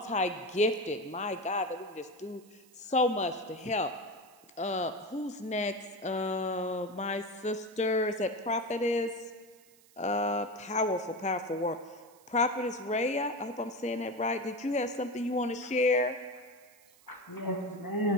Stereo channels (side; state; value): right; noise; hiss, 27 dB below the sound